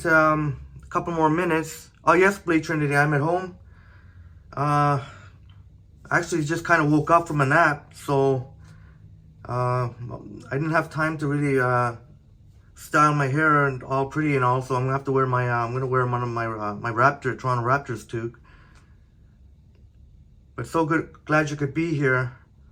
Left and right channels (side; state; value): both; identical; correlation 1.00